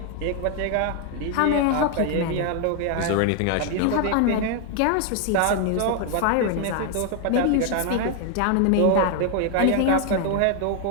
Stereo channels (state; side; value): different; both; correlation 0.00